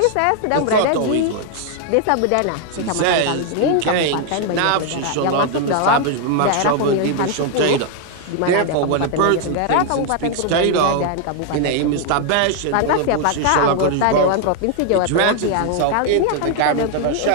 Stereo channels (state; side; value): different; both; correlation 0.00